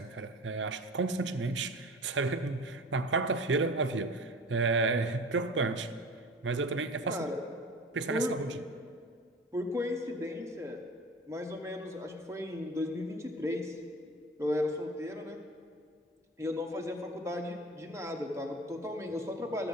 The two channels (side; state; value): both; normal; correlation 0.37